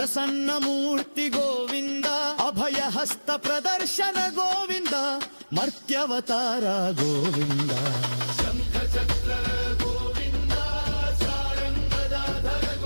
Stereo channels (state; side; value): inverted; both; correlation -1.00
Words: ಮೂರ್ತಿ ಗೋವಿಂದ, ಅಭಯ ಹಸ್ತ ಪ್ರದರ್ಶನ ಗೋವಿಂದ, ಮರ್ತ್ಯವತಾರ ಗೋವಿಂದ, ಶಂಖ ಚಕ್ರ ಗೋವಿಂದ, ಸಾರಂಗದಾಧರ